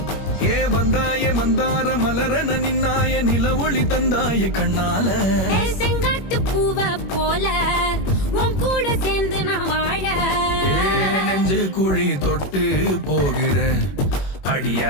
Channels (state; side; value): late; right; 21 ms